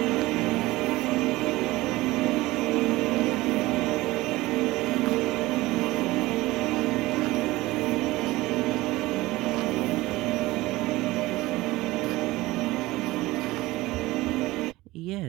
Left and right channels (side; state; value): left; quieter; 19.1 dB